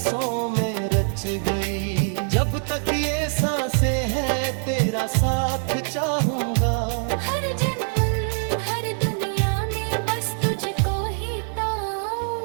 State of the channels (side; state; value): left; silent; 56 dB below the other